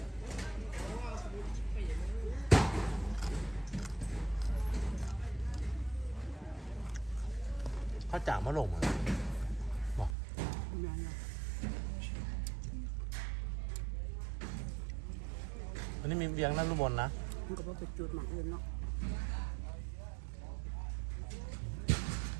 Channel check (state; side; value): drops out; left; at 10.2 s